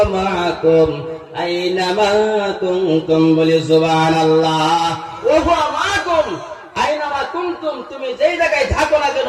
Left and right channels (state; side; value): identical; both; correlation 1.00